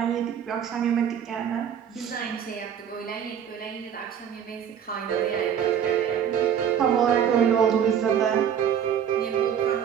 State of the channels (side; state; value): left; quieter; 8.6 dB